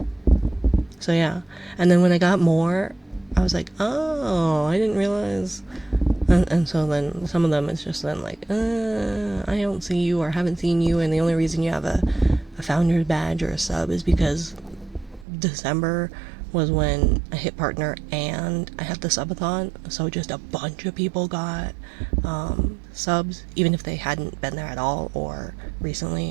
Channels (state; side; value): drops out; left; at 15.2 s